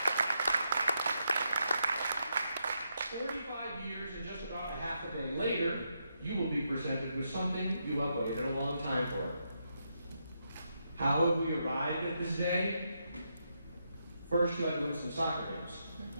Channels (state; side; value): inverted; both; correlation -0.81